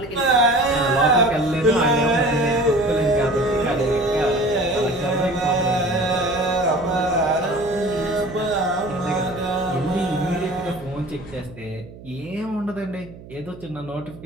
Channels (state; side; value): noise; right; hum, 18 dB below the sound